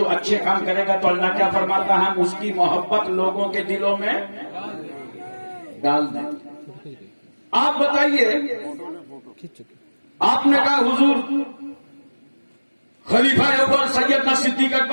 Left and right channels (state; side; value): inverted; both; correlation -1.00